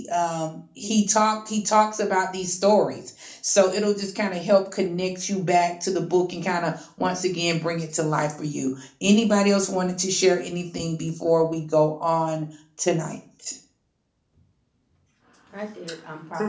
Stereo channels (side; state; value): both; identical; correlation 1.00